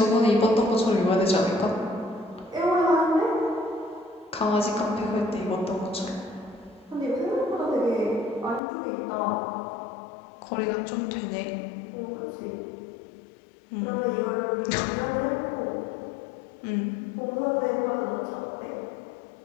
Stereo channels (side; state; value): right; drops out; at 8.6 s